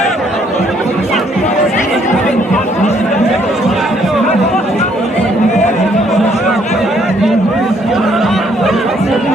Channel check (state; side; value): normal; both; correlation 0.67